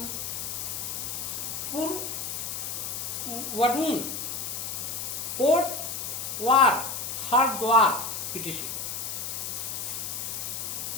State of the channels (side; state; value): left; noise; hiss, 4 dB below the sound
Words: वडून, कोटवार, हरिद्वार इत्यादि।